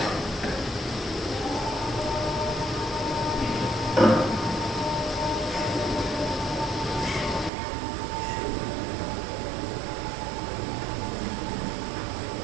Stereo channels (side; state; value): left; drops out; at 7.5 s